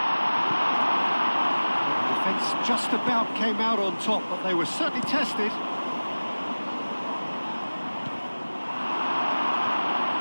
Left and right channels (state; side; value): inverted; both; correlation -1.00